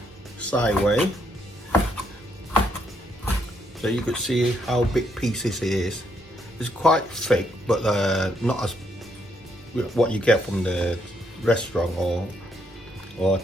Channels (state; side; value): normal; both; correlation 0.74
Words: sideways, so you could see how big pieces it is. It's quite thick, but not as what you get from the restaurant or